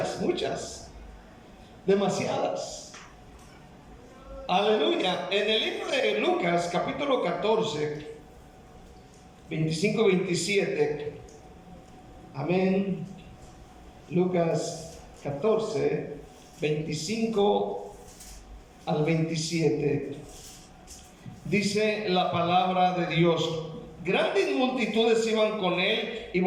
demasiadas. Aleluya. En el libro de Lucas, capítulo 14, 25-27. Amén. Lucas 14, 25 al 27. Dice la palabra de Dios: grandes multitudes iban con él, y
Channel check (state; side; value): identical; both; correlation 1.00